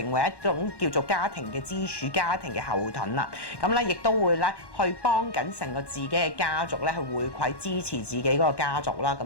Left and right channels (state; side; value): late; right; 1.1 ms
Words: 為一種叫做家庭嘅支柱、家庭嘅後盾啦。咁咧亦都會咧去幫緊成個自己嘅家族咧去回饋支持自己嗰個家族啦。